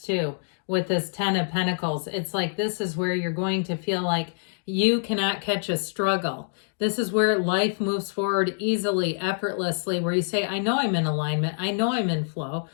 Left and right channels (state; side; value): silent; right; digital silence